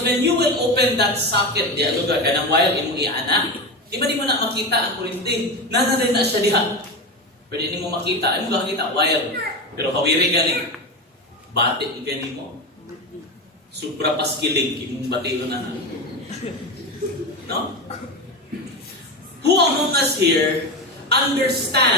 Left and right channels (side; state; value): both; normal; correlation 0.20